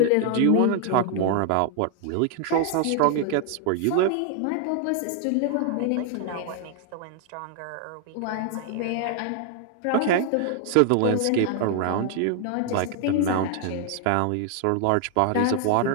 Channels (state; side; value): different; both; correlation 0.00